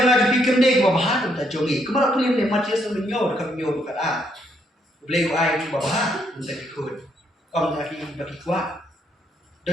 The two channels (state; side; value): normal; both; correlation 0.73